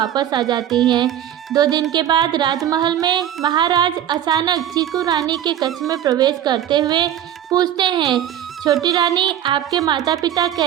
आ जाती हैं। 2 दिन के बाद राजमहल में महाराज अचानक चीकू रानी के कक्ष में प्रवेश करते हुए पूछते हैं, छोटी रानी, आपके माता पिता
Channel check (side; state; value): left; quieter; 10.9 dB